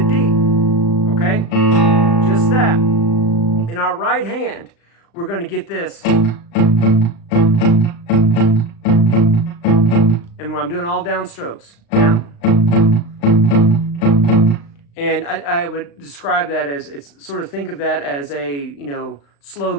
D, okay? Just that. In our right hand, we're going to get this. And I'm doing all down strokes. Down. And I would describe that as, it's sort of, think of that as a, you know, slow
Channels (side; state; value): right; late; 35 ms